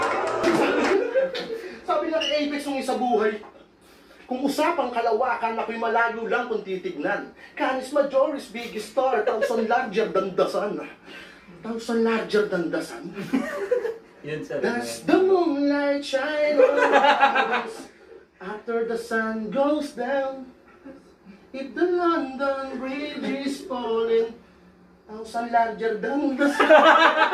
Sabi niya kay Apex nung isa buhay, kung usapang kalawakan, ako'y malayo lang kung titignan. Canis Majoris, biggest star, thousand larger than the sun. Thousand larger than the sun? Yan sa That's the moonlight shine on us after the sun goes down. If the London Bridge is falling, thousand larger than the sun.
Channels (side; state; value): both; identical; correlation 1.00